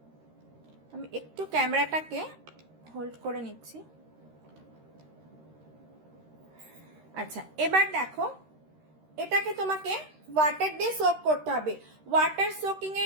আমি একটু ক্যামেরাটাকে হোল্ড করে নিচ্ছি। আচ্ছা, এবার দেখো এটাকে তোমাকে ওয়াটার দিয়ে সোক করতে হবে। ওয়াটার সোকিং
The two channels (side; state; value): left; late; 13 ms